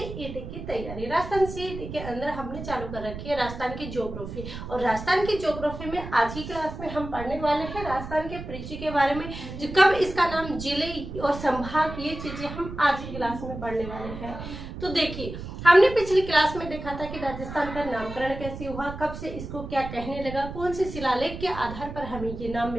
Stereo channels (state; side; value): noise; right; rumble, 9 dB below the sound